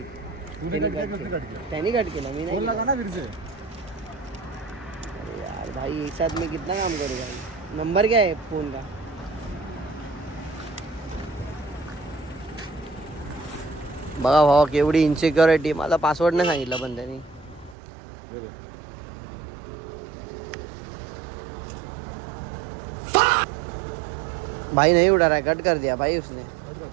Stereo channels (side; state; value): left; drops out; at 17.8 s